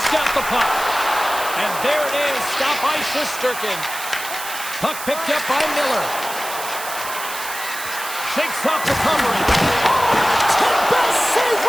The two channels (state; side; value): noise; right; hiss, 9 dB below the sound